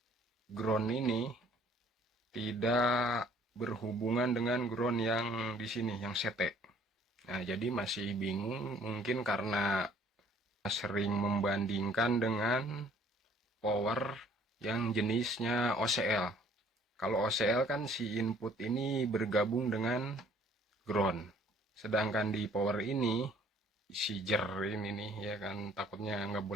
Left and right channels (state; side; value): normal; both; correlation 0.58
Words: Ground ini tidak berhubungan dengan ground yang di sini, yang sete. Nah, jadi masih bingung mungkin karena sering membandingkan dengan power yang jenisnya OCL. Kalau OCL kan si input ini bergabung dengan ground. Sedangkan di power ini si jer ini nih ya kan, takutnya nggak